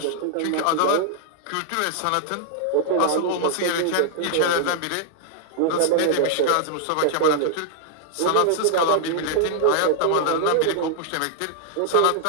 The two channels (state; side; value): different; both; correlation -0.01